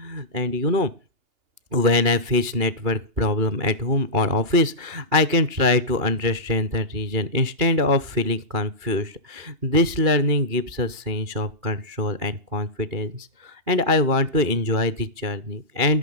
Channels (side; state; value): left; late; 2.8 ms